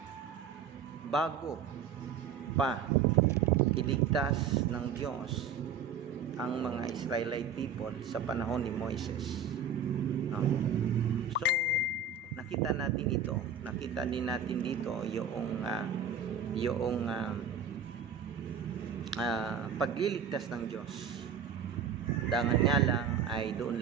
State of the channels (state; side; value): quieter; left; 6.5 dB